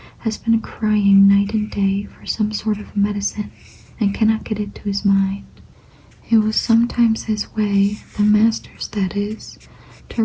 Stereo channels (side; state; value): both; identical; correlation 1.00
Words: has been crying night and day for some sort of medicine, and cannot get it to his mind. It was sometimes his way, the master's that is, to